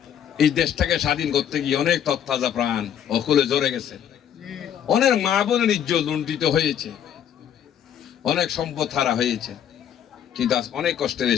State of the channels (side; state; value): right; quieter; 9.5 dB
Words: এই দেশটাকে স্বাধীন করতে গিয়ে অনেক তত্তাজা প্রাণ অকুলে ঝরে গেছে, অনেক মা বোনের ইজ্জত লুণ্ঠিত হয়েছে, অনেক সম্পদ হারা হয়েছে, কিন্তু আজ অনেক কষ্টের